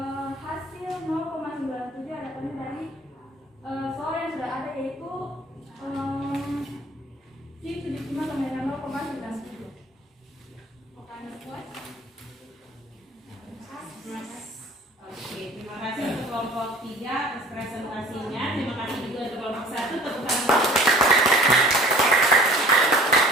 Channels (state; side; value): normal; both; correlation 0.48